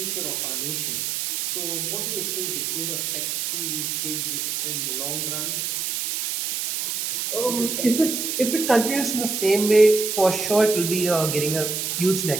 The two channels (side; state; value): right; noise; hiss, 2 dB below the sound